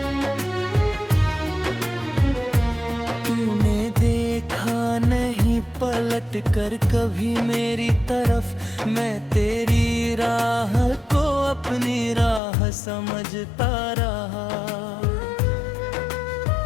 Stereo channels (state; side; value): drops out; right; at 12.4 s